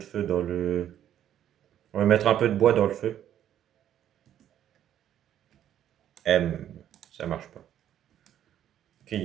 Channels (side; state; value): left; quieter; 10.8 dB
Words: dans le... On va mettre un peu de bois dans le feu. M, ça marche pas. Ok, il